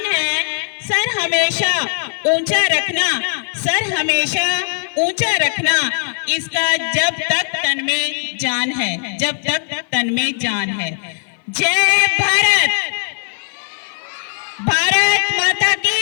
है। सर हमेशा ऊंचा रखना, सर हमेशा ऊंचा रखना, इसका जब तक तन में जान है, जब तक तन में जान है। जय भारत, भारत माता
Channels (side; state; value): right; silent; 56 dB below the other